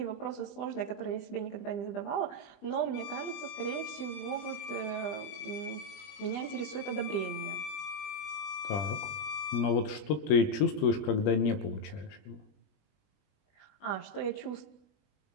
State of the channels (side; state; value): right; late; 20 ms